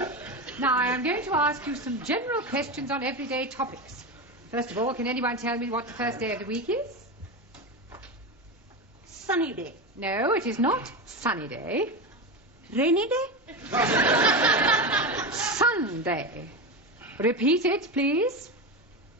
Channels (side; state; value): both; normal; correlation 0.19